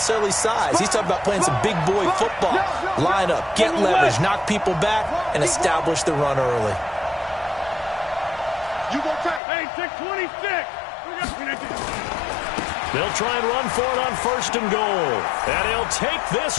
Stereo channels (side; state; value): right; drops out; at 9.4 s